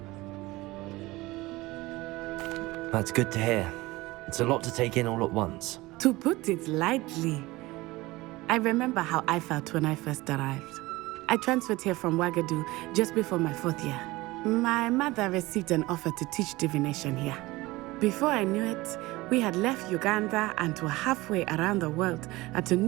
That's good to hear. It's a lot to take in all at once. To put it lightly, I remember how I felt when I first arrived. I transferred here from Ouagadougou just before my 4th year. My mother received an offer to teach divination here. Before I knew it, we had left Uganda and were halfway around the world at a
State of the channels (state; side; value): quieter; left; 20.2 dB